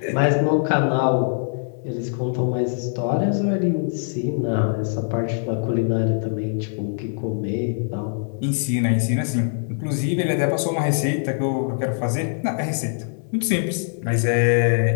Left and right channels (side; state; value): right; silent; digital silence